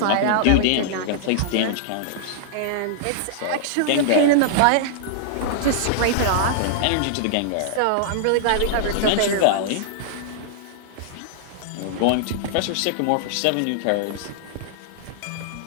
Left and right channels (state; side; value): different; both; correlation -0.01